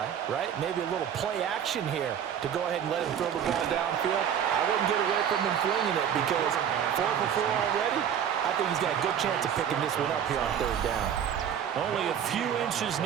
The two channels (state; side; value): quieter; left; 8.8 dB